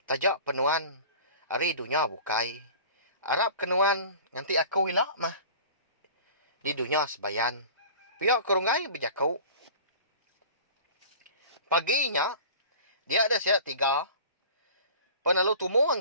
Tajak penuan. Hari dunia bukai. Arab kenuan. Nanti aku ilak mah. Di dunia sebayan. Pihak ke Runggai berjakau. Paginya. Dia ada siap 3. Penalu tumu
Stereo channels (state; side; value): inverted; both; correlation -0.41